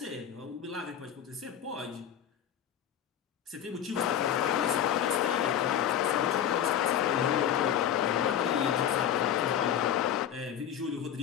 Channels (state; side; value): quieter; right; 9.7 dB